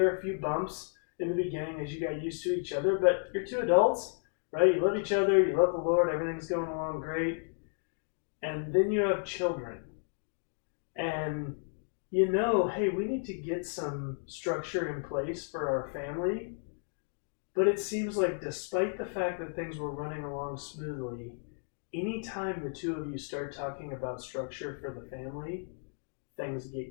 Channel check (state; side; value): silent; right; 56 dB below the other